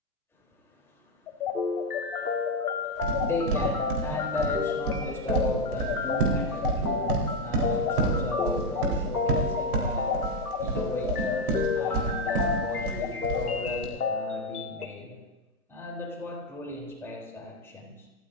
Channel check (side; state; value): both; normal; correlation 0.04